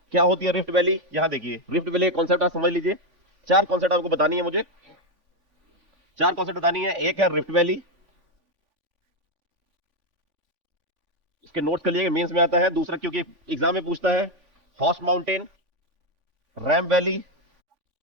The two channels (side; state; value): left; late; 3.5 ms